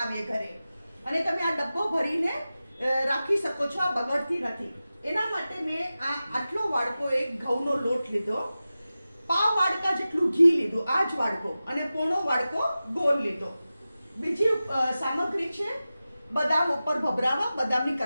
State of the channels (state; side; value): inverted; both; correlation -0.95